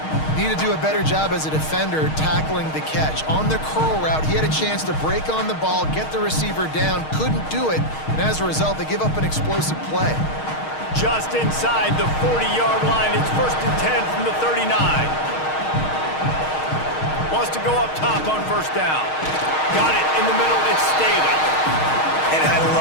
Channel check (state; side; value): late; right; 6.4 ms